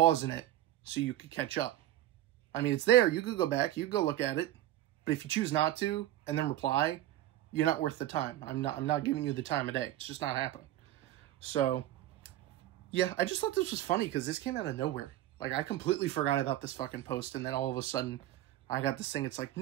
it so you could catch up. I mean, it's there. You could go back. You could go look at it. But if you choose not to and then reply, you're not worth the time. I'm not giving you the time of day. It's just not happening. So, yeah, I just thought this was funny because this came out of nowhere. Like, I completely forgot about this fucking post, and then all of a sudden, I got this thing. It's like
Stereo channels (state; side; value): quieter; left; 14.0 dB